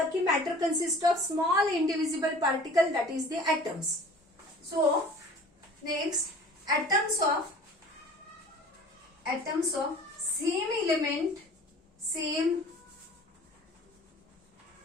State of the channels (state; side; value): normal; both; correlation 0.45